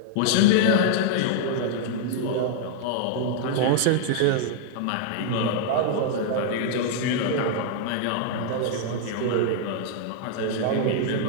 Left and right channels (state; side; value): different; both; correlation -0.01